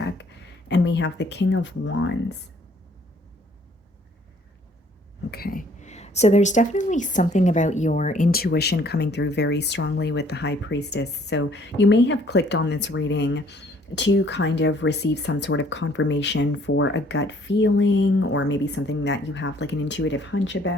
and we have the King of Wands. Okay. So there's definitely something about your intuition coming through very strongly with the High Priestess. So you may have clicked on this reading to kind of receive some sort of confirmation for a gut feeling or maybe something that you have like an intuitive hunch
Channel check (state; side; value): normal; both; correlation 0.60